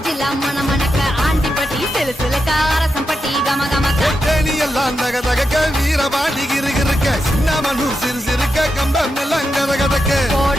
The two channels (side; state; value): both; normal; correlation 0.87